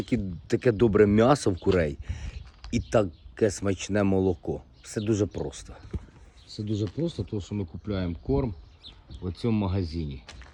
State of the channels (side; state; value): both; identical; correlation 1.00